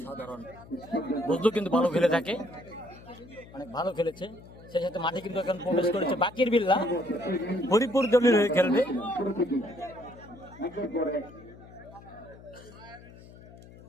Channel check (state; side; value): noise; left; hum, 20 dB below the sound